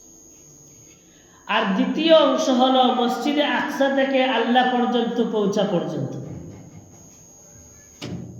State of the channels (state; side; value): identical; both; correlation 1.00